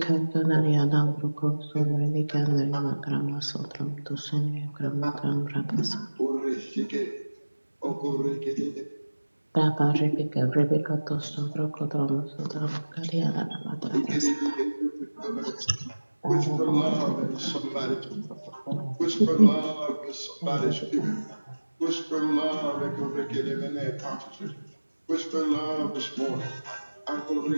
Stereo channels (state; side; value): inverted; both; correlation -1.00